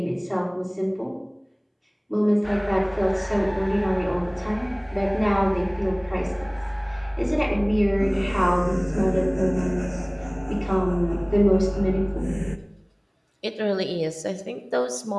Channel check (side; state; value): both; identical; correlation 1.00